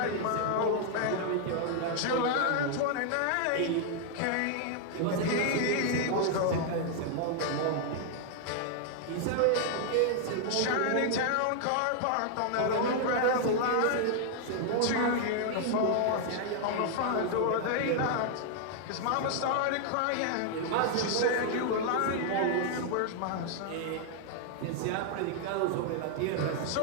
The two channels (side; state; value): both; different; correlation 0.00